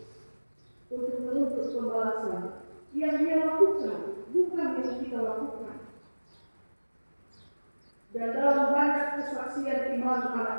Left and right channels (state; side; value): inverted; both; correlation -1.00